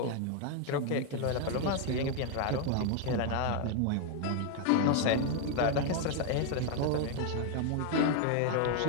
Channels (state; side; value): different; both; correlation 0.01